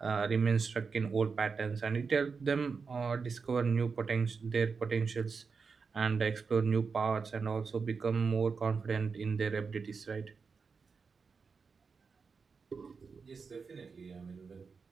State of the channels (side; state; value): left; quieter; 5.1 dB